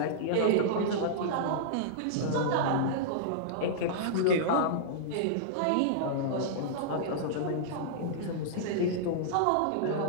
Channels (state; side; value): different; both; correlation -0.02